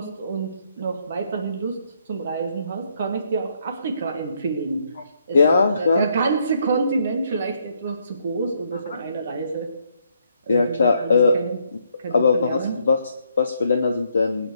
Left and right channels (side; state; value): both; inverted; correlation -0.73